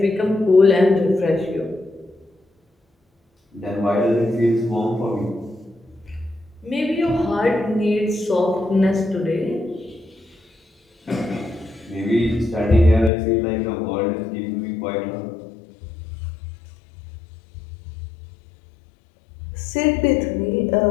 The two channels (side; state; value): right; drops out; at 13.1 s